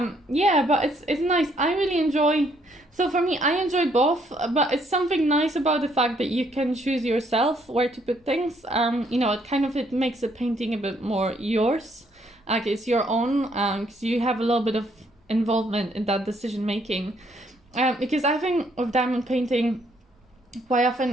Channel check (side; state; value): both; normal; correlation 0.68